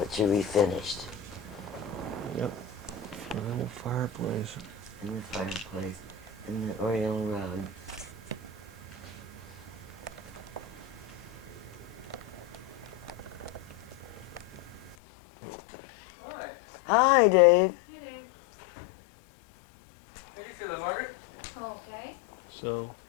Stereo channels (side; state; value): right; drops out; at 15.0 s